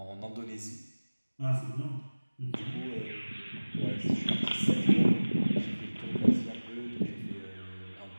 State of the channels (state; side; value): inverted; both; correlation -1.00